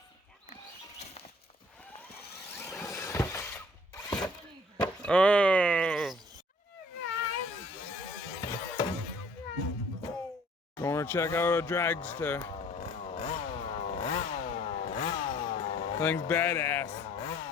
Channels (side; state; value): both; normal; correlation 0.56